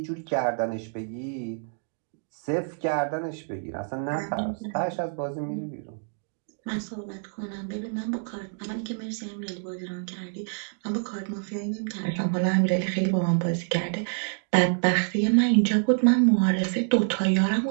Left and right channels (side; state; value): left; silent; digital silence